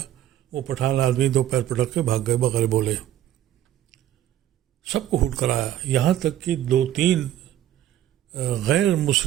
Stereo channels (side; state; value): left; quieter; 12.0 dB